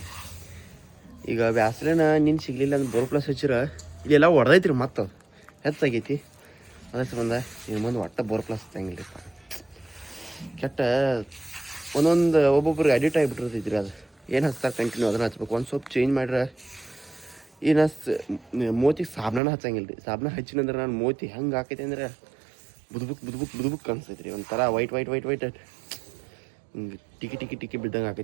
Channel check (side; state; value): left; drops out; at 19.4 s